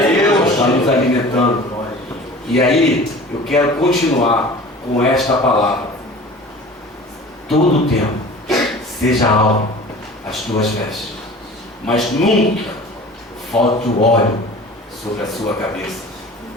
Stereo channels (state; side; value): normal; both; correlation 0.42